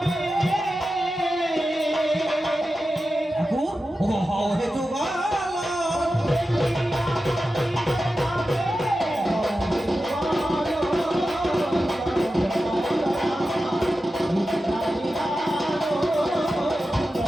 ঠাকুর ও হও হে যুগল,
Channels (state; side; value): normal; both; correlation 0.92